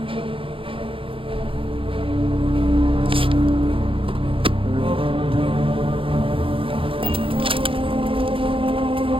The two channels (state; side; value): late; left; 0.26 ms